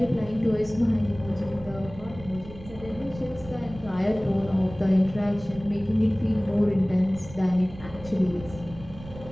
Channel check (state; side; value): noise; right; rumble, 16 dB below the sound